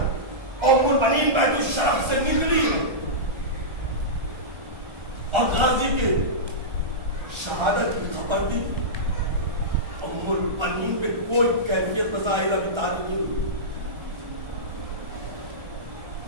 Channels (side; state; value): left; late; 1.3 ms